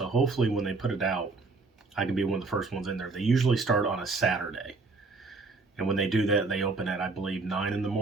hopefully when they put it out, I can be one of the first ones in there. They usually start on a Saturday. And when they do that, they open at, I believe, 9 in the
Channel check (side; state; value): left; quieter; 3.9 dB